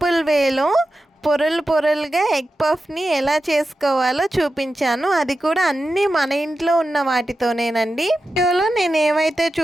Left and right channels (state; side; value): normal; both; correlation 0.91